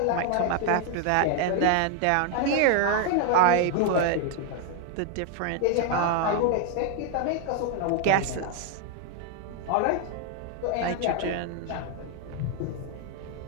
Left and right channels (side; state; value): both; different; correlation 0.00